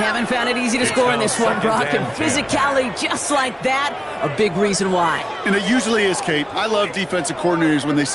haven't found it easy to score in this one, Brock, and physicality just like that, a big reason why. And it usually is, Kate. I love defensive coordinators when they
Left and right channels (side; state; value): both; identical; correlation 1.00